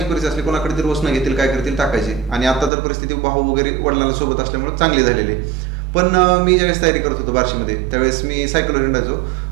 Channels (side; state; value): left; drops out; at 2.7 s